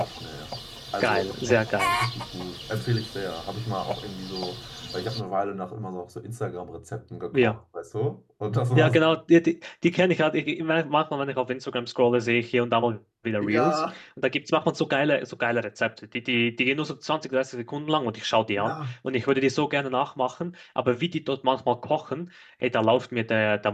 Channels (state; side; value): identical; both; correlation 1.00